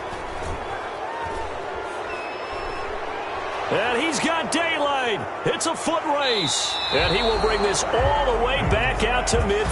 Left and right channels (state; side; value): identical; both; correlation 1.00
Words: And he's got daylight. It's a foot race. And he will bring this all the way back out to